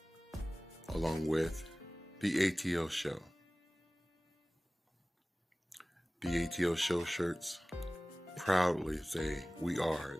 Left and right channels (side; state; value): both; normal; correlation 0.98